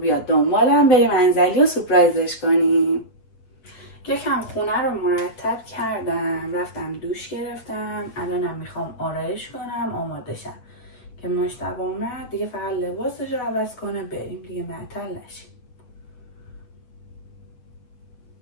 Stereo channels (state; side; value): late; right; 8.6 ms